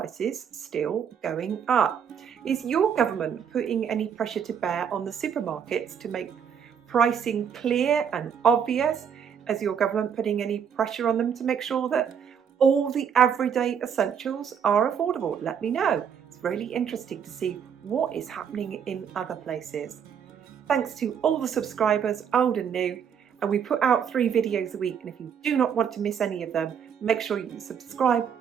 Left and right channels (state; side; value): quieter; left; 7.7 dB